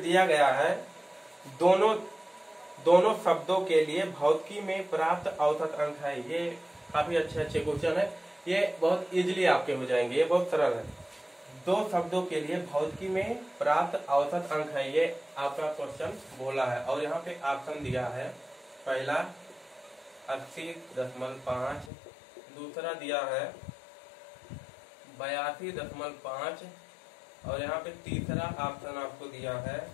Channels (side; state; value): right; drops out; at 21.9 s